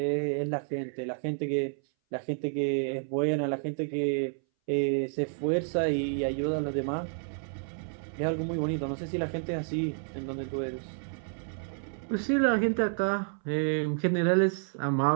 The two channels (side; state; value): left; silent; 58 dB below the other